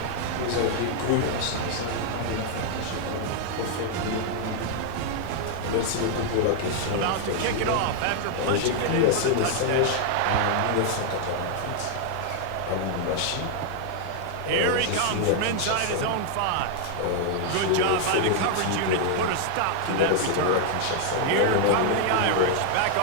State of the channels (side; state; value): both; different; correlation 0.00